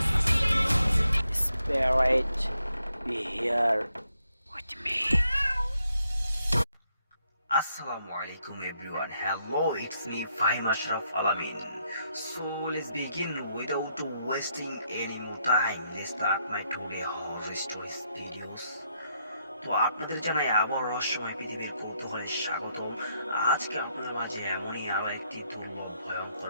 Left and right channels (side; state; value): both; inverted; correlation -0.77